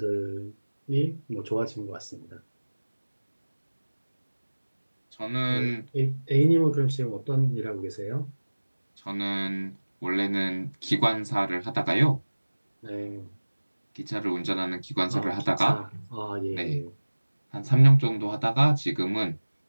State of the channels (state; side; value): inverted; both; correlation -1.00